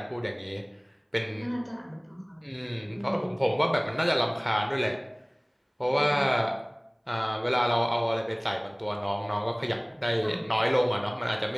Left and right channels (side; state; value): both; identical; correlation 1.00